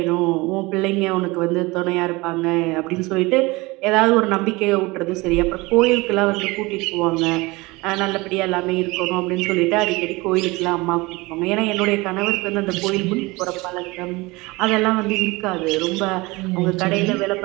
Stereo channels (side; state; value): left; quieter; 23.1 dB